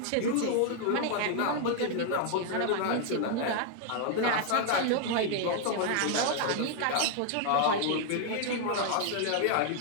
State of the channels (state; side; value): different; both; correlation 0.00